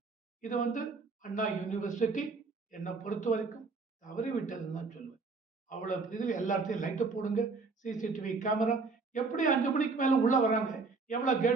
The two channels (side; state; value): left; quieter; 4.2 dB